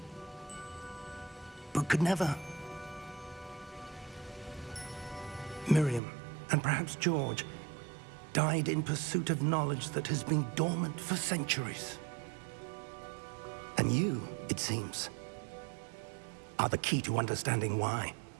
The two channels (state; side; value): drops out; left; at 6.0 s